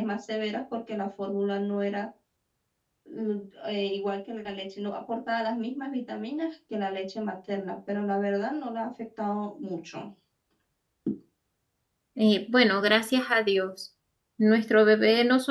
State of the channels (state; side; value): identical; both; correlation 1.00